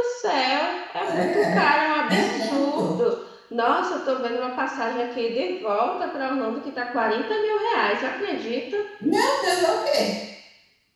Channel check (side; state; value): both; identical; correlation 1.00